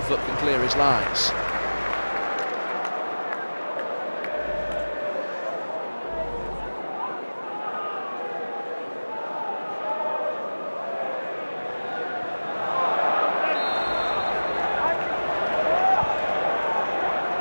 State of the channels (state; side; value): inverted; both; correlation -1.00